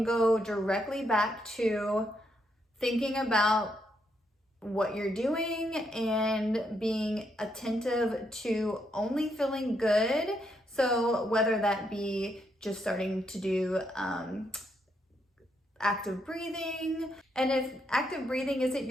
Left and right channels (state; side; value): normal; both; correlation 0.77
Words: go directly back to thinking about what you're doing and being attentive to only feeling good. So whether that be just starting to do active breathing, and if active breathing isn't